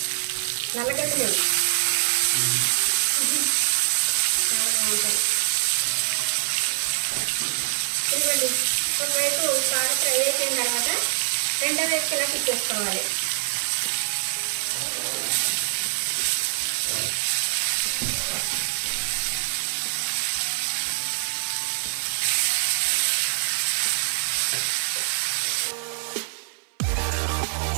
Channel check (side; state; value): left; silent; 57 dB below the other